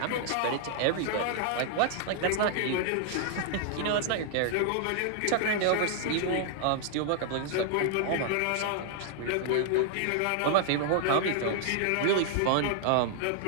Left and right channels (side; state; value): both; different; correlation -0.01